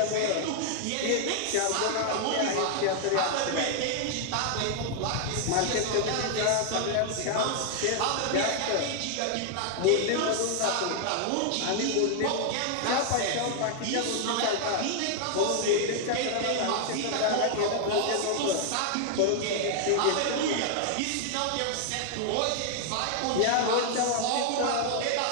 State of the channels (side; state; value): both; different; correlation 0.00